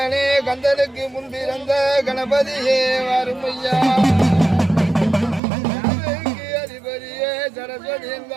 கந்தனுக்கு முன்பிறந்த கணபதியே வருமையா அதிபதியே சரஸ்வதி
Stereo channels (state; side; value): drops out; left; at 5.4 s